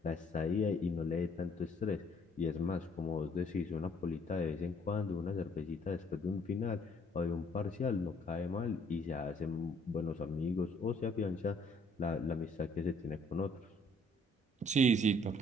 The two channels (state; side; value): normal; both; correlation 0.62